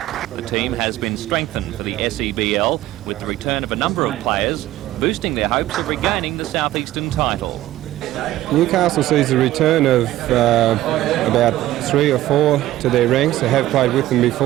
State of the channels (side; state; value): left; quieter; 15.1 dB